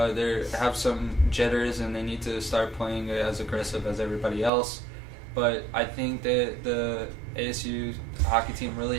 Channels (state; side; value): drops out; left; at 4.5 s